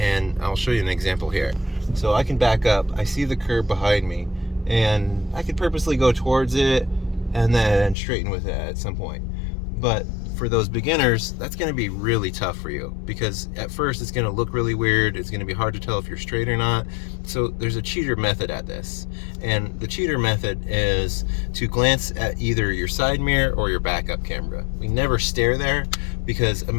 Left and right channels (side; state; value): right; drops out; at 8.0 s